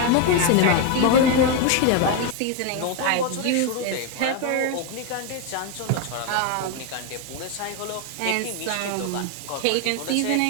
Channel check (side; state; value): both; different; correlation 0.02